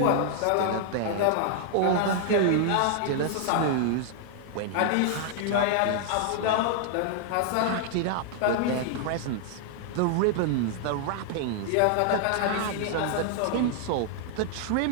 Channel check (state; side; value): different; both; correlation 0.00